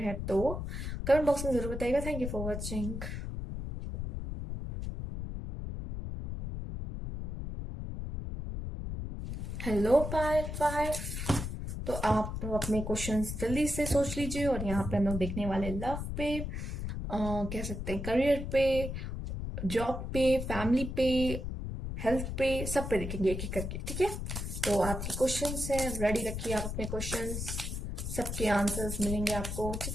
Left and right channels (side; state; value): left; noise; rumble, 5 dB below the sound